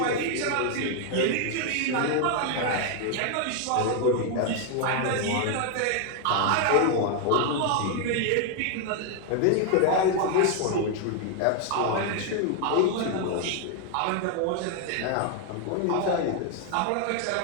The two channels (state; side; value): different; both; correlation 0.00